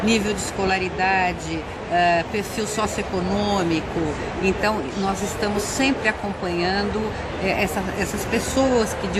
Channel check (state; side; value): identical; both; correlation 1.00